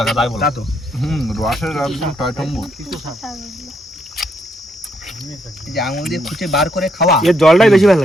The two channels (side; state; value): both; normal; correlation 0.75